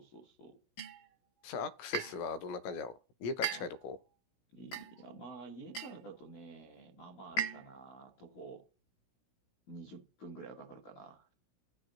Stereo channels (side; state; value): right; late; 16 ms